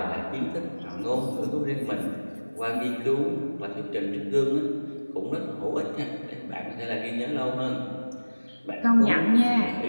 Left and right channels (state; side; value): inverted; both; correlation -1.00